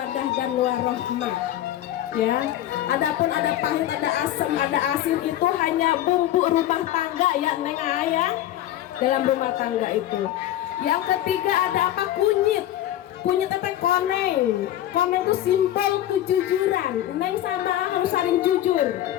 dan warahmah. Ya, adapun ada pahit, ada asam, ada asin itu hanya bumbu rumah tangga ya Neng Ayah, dalam rumah tangga itu. Yang ketiga ada apa? Kunyit. Kunyit teteh koneng. Koneng itu simbol kejujuran. Neng sama harus saling jujur.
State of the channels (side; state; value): right; quieter; 12.9 dB